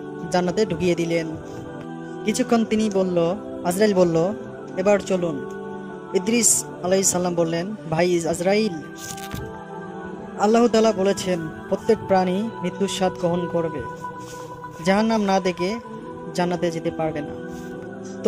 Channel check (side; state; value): both; identical; correlation 1.00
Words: জান্নাতে ঢুকিয়ে দিলেন। কিছুক্ষণ আজরাইল বলল, এবার চলুন। ইদ্রিস আলাইহিস সালাম বললেন, ভাই আজরাইল, আল্লাহ তাআলা বলেছেন প্রত্যেক প্রাণী মৃত্যুর স্বাদ গ্রহণ করবে, জাহান্নাম না দেখে জান্নাতে যেতে পারবে না।